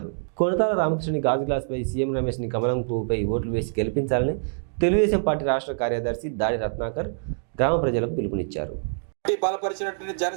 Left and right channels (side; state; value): left; silent; digital silence